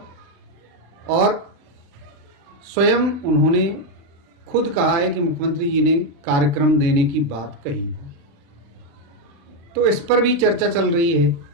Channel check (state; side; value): late; left; 35 ms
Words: और स्वयं उन्होंने खुद कहा है कि मुख्यमंत्री जी ने कार्यक्रम देने की बात कही है। तो इस पर भी चर्चा चल रही है।